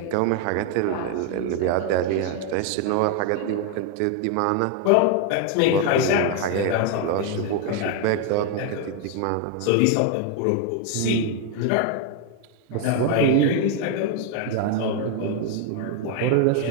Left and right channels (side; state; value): both; different; correlation 0.01